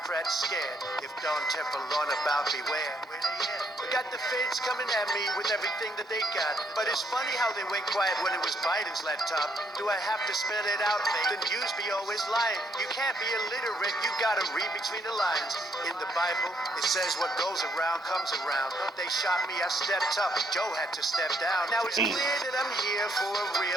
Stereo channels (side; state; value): both; normal; correlation 0.73